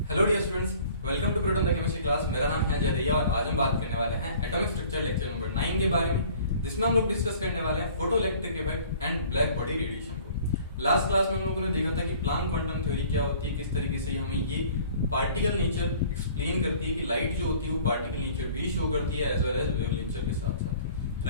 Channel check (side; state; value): both; inverted; correlation -0.51